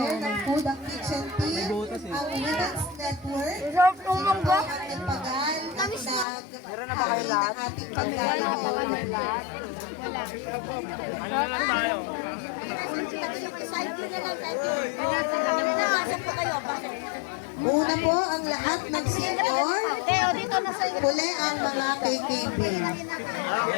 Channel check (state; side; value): drops out; right; at 6.2 s